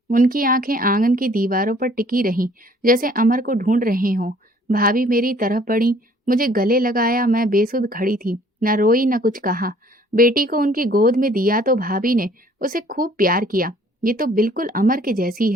उनकी आंखें आंगन की दीवारों पर टिकी रहीं, जैसे अमर को ढूंढ रहे हों। भाभी मेरी तरफ बढ़ी, मुझे गले लगाया। मैं बेसुध खड़ी थी, न रोई न कुछ कहा। बेटी को उनकी गोद में दिया तो भाभी ने उसे खूब प्यार किया। ये तो बिल्कुल अमर के जैसी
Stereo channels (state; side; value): normal; both; correlation 0.57